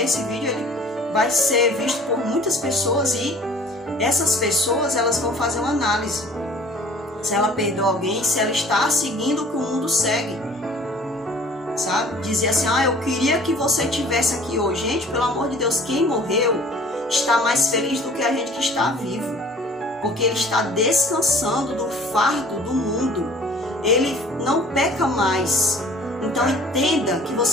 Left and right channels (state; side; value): normal; both; correlation 0.49